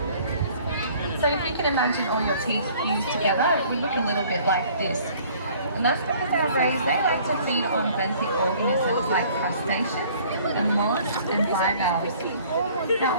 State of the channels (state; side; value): inverted; both; correlation -0.54